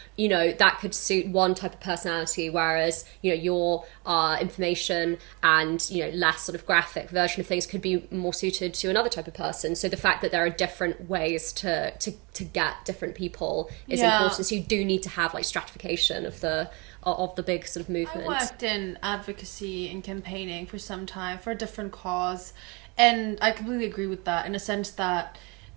You know, that could suit one type of personality, whereas, you know, your information and, you know, less sort of graphic version of things could be more suited to another type of person. So the fact that there are different ways to get different people is important. So you do need to have like stratification of the big sort of movement. I worked in advocacy and campaigning for some time for a different cause, and I completely agree with that, in a sense that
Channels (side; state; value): left; quieter; 28.6 dB